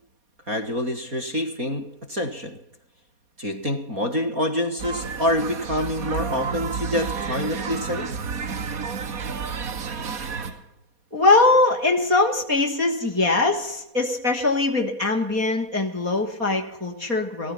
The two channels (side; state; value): left; late; 4.2 ms